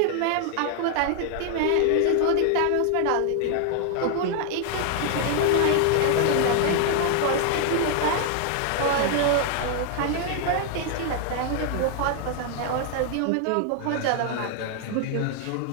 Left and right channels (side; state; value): both; different; correlation 0.00